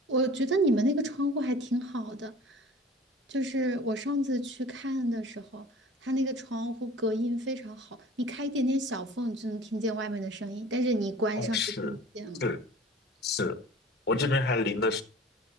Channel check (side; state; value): both; normal; correlation 0.43